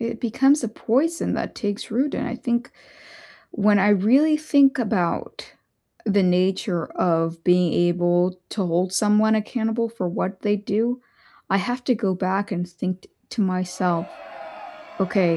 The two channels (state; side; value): identical; both; correlation 1.00